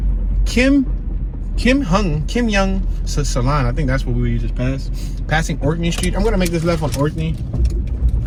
Kim Young Salon. I think that's what we just passed. Passing Orkney Street. I'm gonna make this left on Orkney.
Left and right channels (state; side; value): identical; both; correlation 1.00